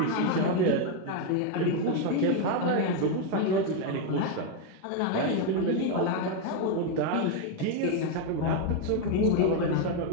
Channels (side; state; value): both; different; correlation 0.02